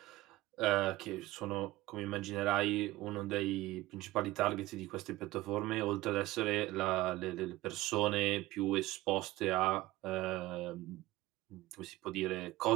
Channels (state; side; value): quieter; left; 17.5 dB